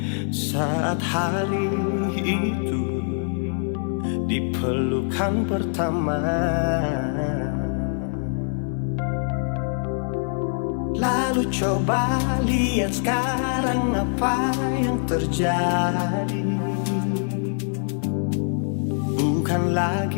saat hari itu di pelukan pertama. Lalu coba lihat sekarang apa yang terjadi. Bukan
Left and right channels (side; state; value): right; silent; 63 dB below the other